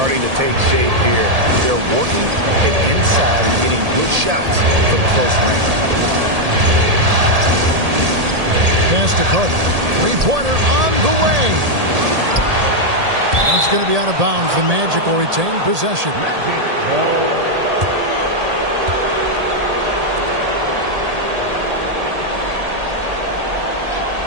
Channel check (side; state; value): left; late; 1.8 ms